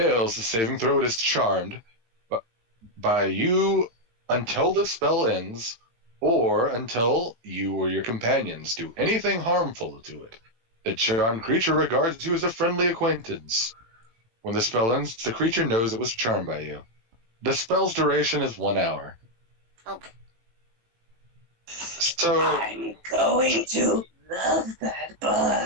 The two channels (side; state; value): left; late; 18 ms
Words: the saving throw is charmed by you until the spell ends, or until you or your companions do anything harmful to it. The charmed creature regards you as a friendly acquaintance. When the spell ends, the creature knows it was charmed by you. The spell's duration is 1 hour. Okay. So I'm going to love that